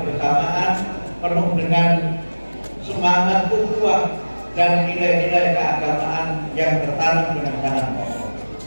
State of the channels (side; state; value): both; inverted; correlation -1.00